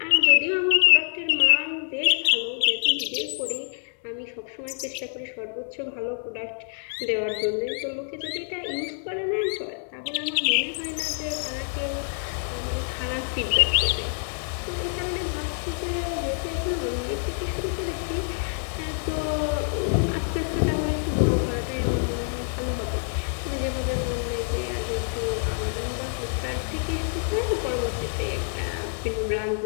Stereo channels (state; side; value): silent; right; 59 dB below the other